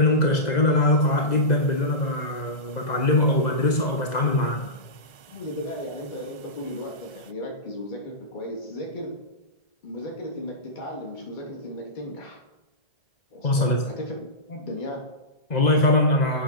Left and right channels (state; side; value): late; right; 2.0 ms